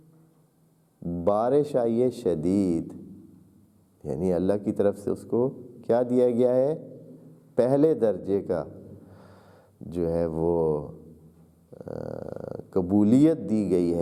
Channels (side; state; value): both; identical; correlation 1.00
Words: بارش آئی ہے شدید، یعنی اللہ کی طرف سے اس کو کیا دیا گیا ہے؟ پہلے درجے کا جو ہے وہ قبولیت دی گئی